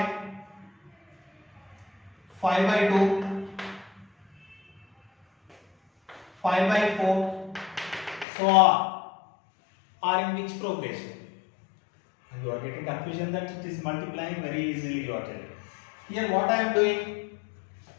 5 by 2, 5 by 4, so on, are in which progression? You are getting confusion that it is multiplying very easily, you are telling. Here what I am doing,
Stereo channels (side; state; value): right; drops out; at 8.2 s